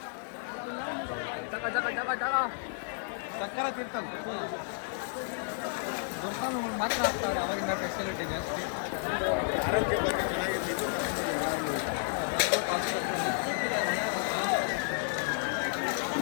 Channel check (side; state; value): right; silent; 57 dB below the other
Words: ಸಕ್ಕರ ತೀರ್ಥ ಮಾತ್ರ ಆಗ್ತಾರೆ. ಅವಾಗಿಂದ ಫೆಸಿಲಿಟಿ ಜಾಸ್ತಿ.